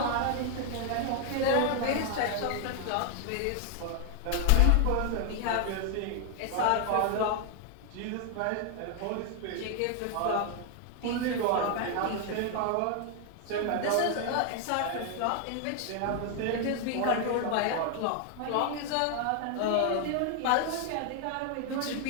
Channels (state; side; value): different; both; correlation 0.00